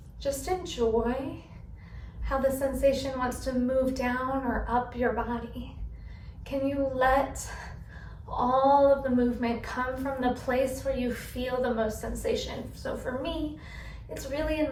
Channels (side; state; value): both; identical; correlation 1.00